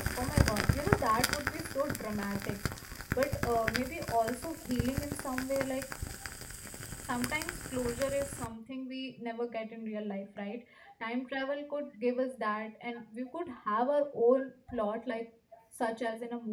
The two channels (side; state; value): both; identical; correlation 1.00